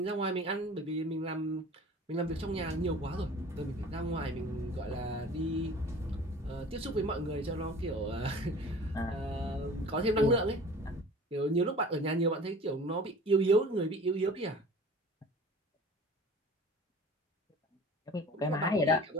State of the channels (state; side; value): normal; both; correlation 0.44